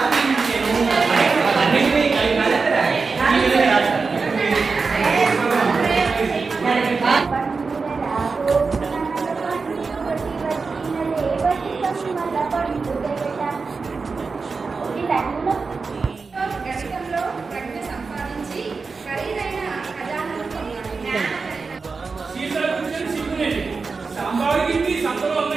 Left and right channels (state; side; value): quieter; left; 4.5 dB